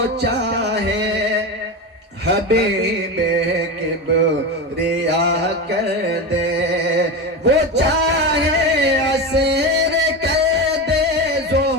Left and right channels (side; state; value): both; normal; correlation 0.20